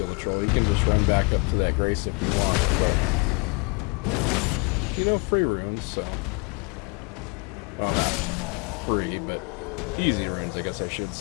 the troll, you can just run back up to that grace if you want. But, you know, free runes, so. Well, not free, but easy runes, I guess I should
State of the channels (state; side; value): quieter; right; 32.2 dB